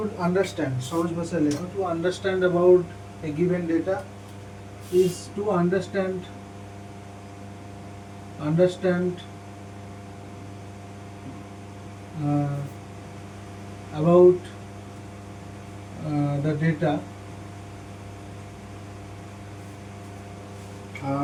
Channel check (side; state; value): both; identical; correlation 1.00